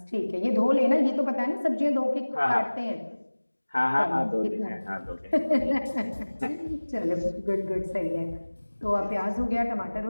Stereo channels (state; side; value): inverted; both; correlation -1.00